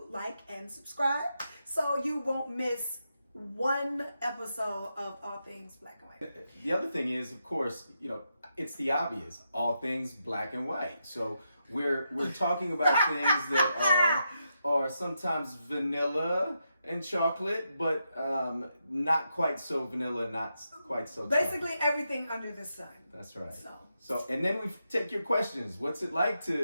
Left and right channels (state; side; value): inverted; both; correlation -0.84